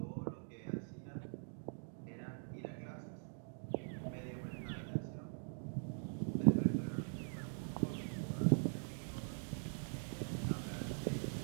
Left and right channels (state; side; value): silent; left; digital silence